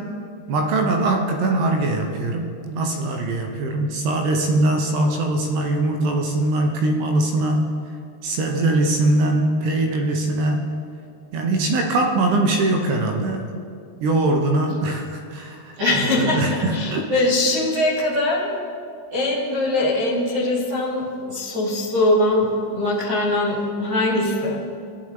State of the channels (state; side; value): late; left; 20 ms